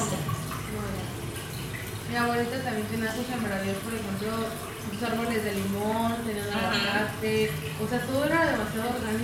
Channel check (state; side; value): identical; both; correlation 1.00